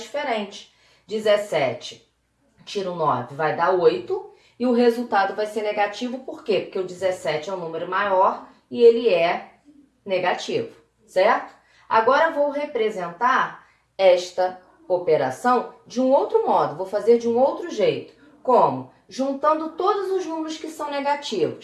diferentes. 17 tiro 9 vai dar 8 e o resultado vai ser negativo. Por quê? Porque o 17 é um número maior e ele é negativo, certo? Agora vou representar esta operação de um outro modo, vou fazer de um outro jeito. Como? Juntando todos os números que são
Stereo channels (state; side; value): identical; both; correlation 1.00